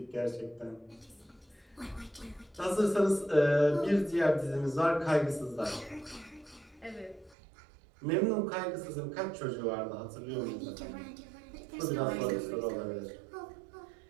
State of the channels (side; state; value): left; drops out; at 7.4 s